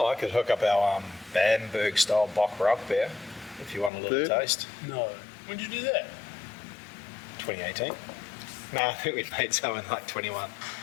I could hook up our Bamberg style Bock Rock beer if you want a little Yeah. taste. No. When did you do that? 2018. No, I think we made some in like 21.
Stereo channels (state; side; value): drops out; right; at 3.9 s